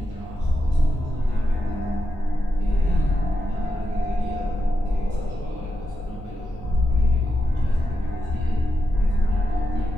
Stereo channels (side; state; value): both; normal; correlation 0.86